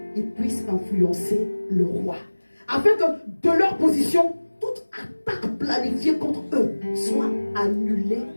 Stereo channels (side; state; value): both; inverted; correlation -1.00